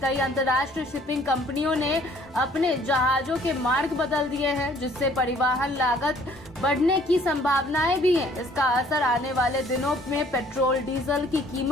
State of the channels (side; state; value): both; normal; correlation 0.58